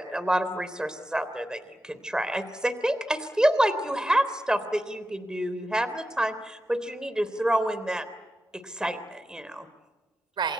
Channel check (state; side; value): normal; both; correlation 0.90